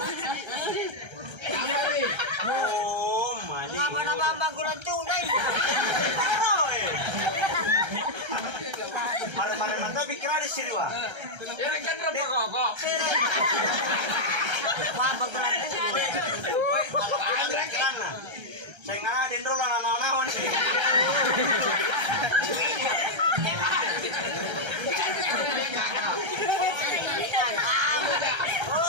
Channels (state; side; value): late; left; 1.3 ms